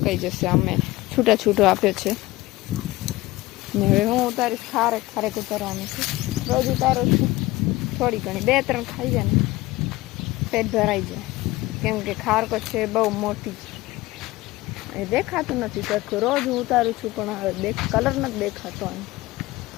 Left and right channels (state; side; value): quieter; right; 19.0 dB